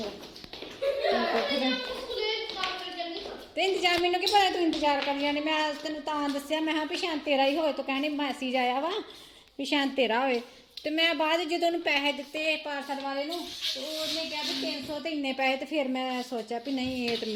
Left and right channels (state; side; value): identical; both; correlation 1.00